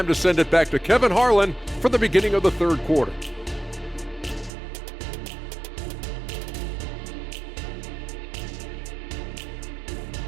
to send it back to Kevin Harlan for the beginning of the third quarter.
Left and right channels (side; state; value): left; drops out; at 4.5 s